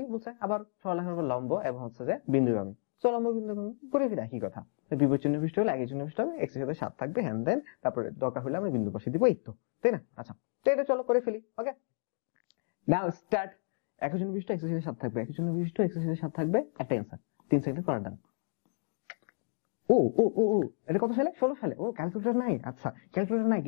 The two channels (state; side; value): silent; right; digital silence